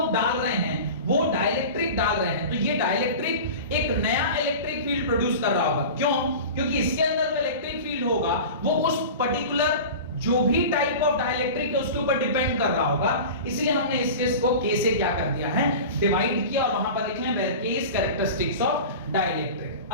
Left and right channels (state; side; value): inverted; both; correlation -0.33